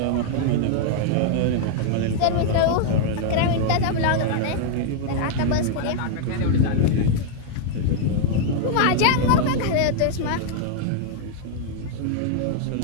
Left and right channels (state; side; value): different; both; correlation 0.00